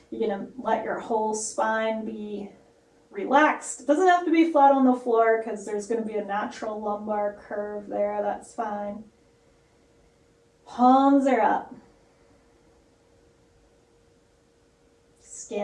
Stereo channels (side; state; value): both; identical; correlation 1.00